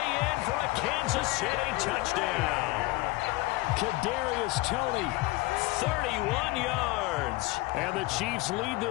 in for a Kansas City touchdown. Kadarius Toney, 31 yards. And the Chiefs lead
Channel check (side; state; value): right; quieter; 20.9 dB